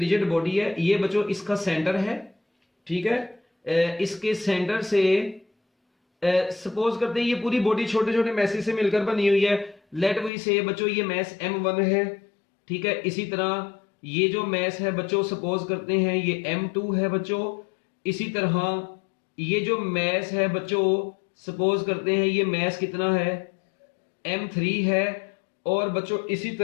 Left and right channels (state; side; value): drops out; right; at 10.3 s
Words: बॉडी है, ये बच्चों इसका सेंटर है, ठीक है। इसके सेंटर से सपोज करते हैं ये पूरी बॉडी छोटे छोटे मैसेज से मिलकर बनी हुई है। लेट वी से बच्चों ये मैस M1 है, ठीक है। इसी तरह ये जो मैस है बच्चों सपोज करते हैं ये M2 है बच्चों। इसी तरह ये जो मैस है बच्चों सपोज करते हैं ये मैस कितना है, M3 है। और बच्चों इसी